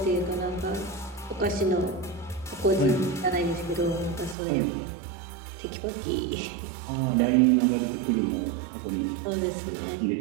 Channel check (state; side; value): drops out; left; at 4.4 s